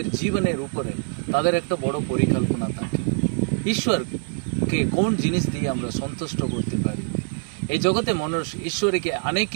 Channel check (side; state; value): left; silent; 63 dB below the other